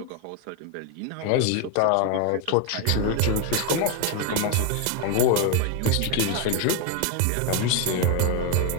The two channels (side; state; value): both; different; correlation 0.01